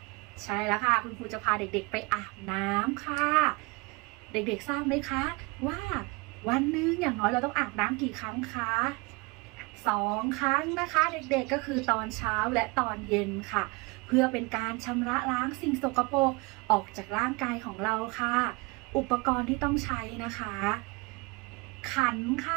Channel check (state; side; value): quieter; left; 26.8 dB